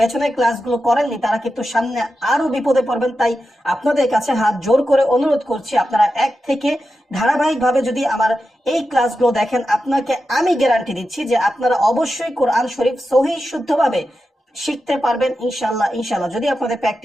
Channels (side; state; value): both; normal; correlation 0.90